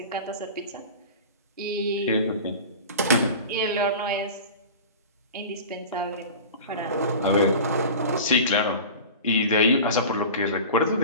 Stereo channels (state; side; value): inverted; both; correlation -0.35